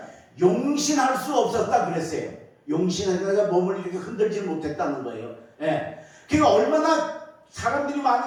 용신할 수 없었다 그랬어요. 용신하다가 몸을 이렇게 흔들지 못했다는 거예요. 예. 그러니까 얼마나 사람들이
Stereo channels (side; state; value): both; identical; correlation 1.00